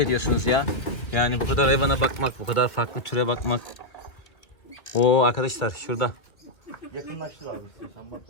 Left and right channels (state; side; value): late; right; 1.8 ms